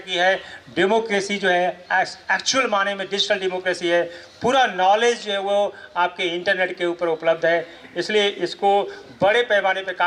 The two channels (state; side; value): identical; both; correlation 1.00